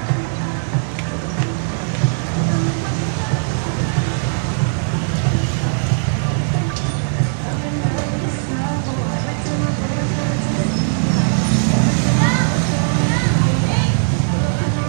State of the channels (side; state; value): left; silent; digital silence